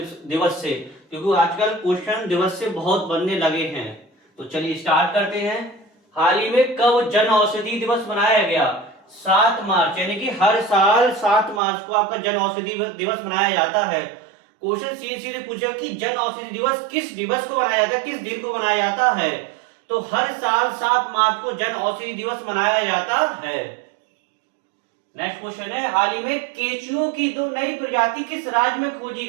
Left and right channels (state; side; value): drops out; left; at 11.6 s